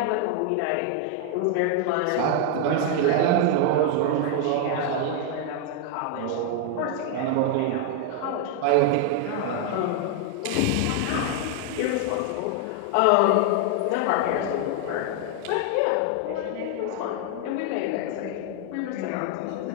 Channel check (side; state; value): both; different; correlation 0.00